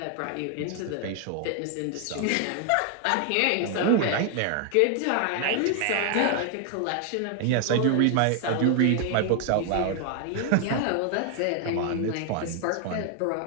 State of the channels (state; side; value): different; both; correlation 0.00